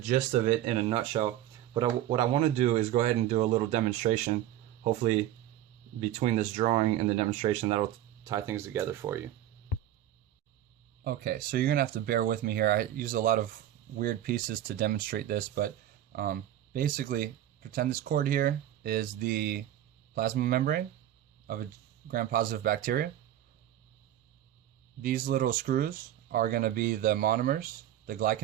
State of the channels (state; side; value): quieter; left; 12.2 dB